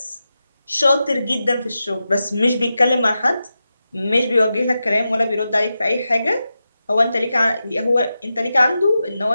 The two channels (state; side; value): inverted; both; correlation -0.91